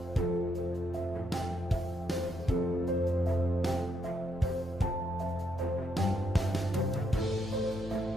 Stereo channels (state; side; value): normal; both; correlation 0.77